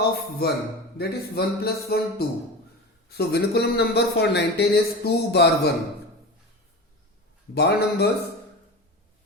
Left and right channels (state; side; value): normal; both; correlation 0.28